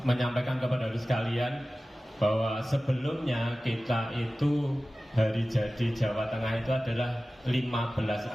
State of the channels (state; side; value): normal; both; correlation 0.96